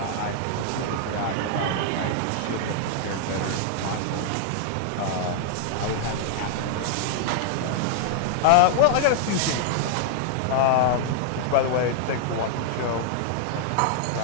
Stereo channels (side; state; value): both; different; correlation -0.01